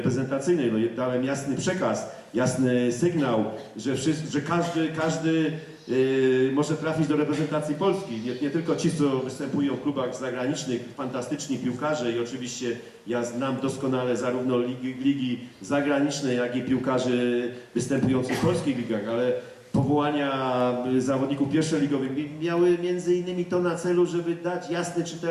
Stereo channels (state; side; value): identical; both; correlation 1.00